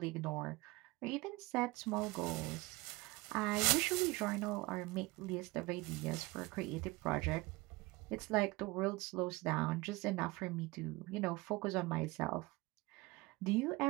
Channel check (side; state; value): left; quieter; 22.5 dB